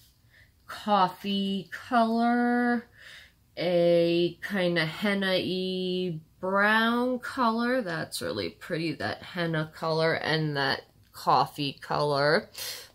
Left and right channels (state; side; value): identical; both; correlation 1.00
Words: coffee color, a kind of henna-y brown color. That's really pretty, that henna color and that coffee color.